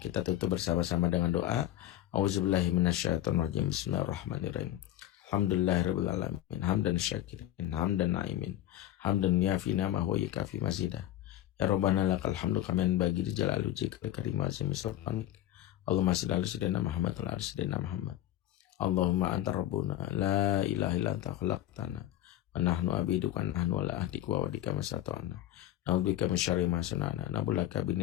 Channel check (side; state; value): right; quieter; 13.0 dB